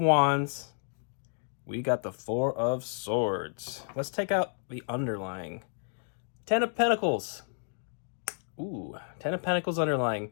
We got the Four of Swords. Let's take out the underlying. 10 of Pentacles. Ooh, 10 of Pentacles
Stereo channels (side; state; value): right; silent; 57 dB below the other